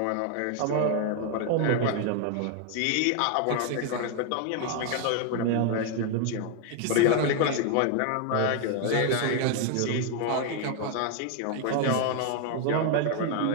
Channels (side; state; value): both; different; correlation 0.01